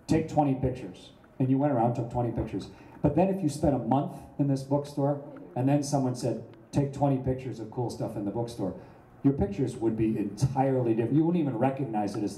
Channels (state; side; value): identical; both; correlation 1.00